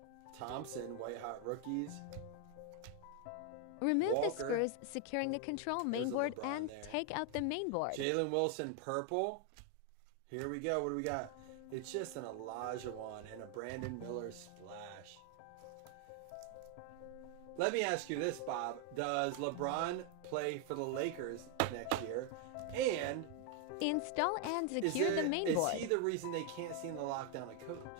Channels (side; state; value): both; different; correlation 0.01